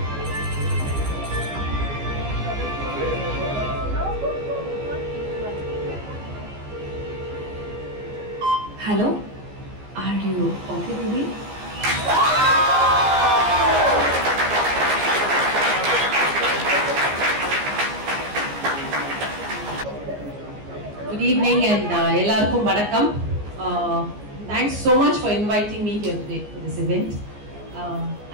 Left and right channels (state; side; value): late; left; 14 ms